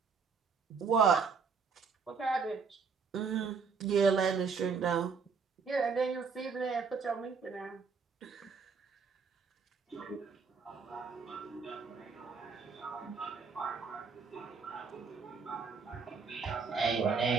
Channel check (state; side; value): quieter; left; 5.4 dB